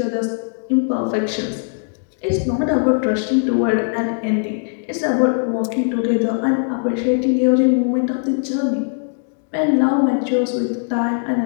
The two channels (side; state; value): right; silent; digital silence